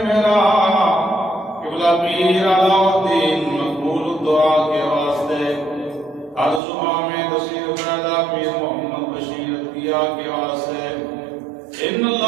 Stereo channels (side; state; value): left; drops out; at 6.6 s